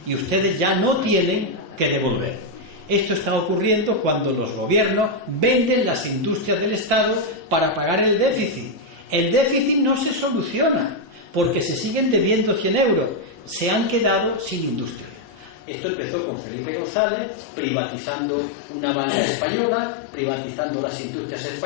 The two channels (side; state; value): right; drops out; at 15.6 s